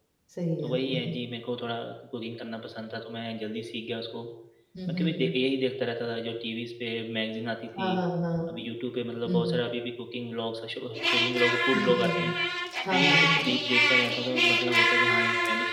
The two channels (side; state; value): both; identical; correlation 1.00